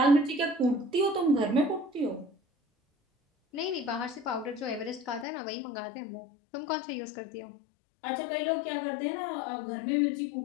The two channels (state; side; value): drops out; right; at 5.2 s